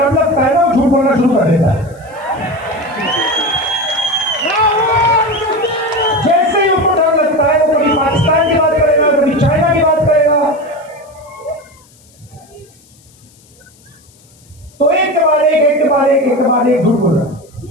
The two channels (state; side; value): noise; left; hiss, 29 dB below the sound